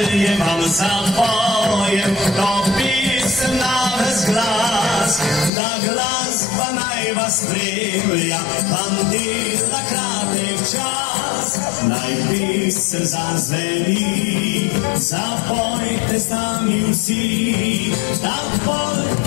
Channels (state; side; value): drops out; right; at 5.5 s